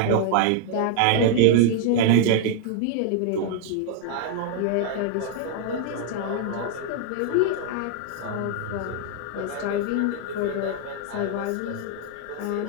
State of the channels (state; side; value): different; both; correlation 0.00